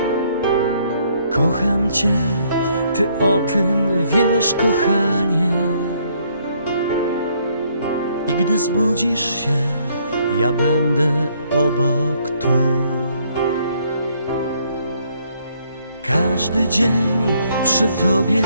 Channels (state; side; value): inverted; both; correlation -0.68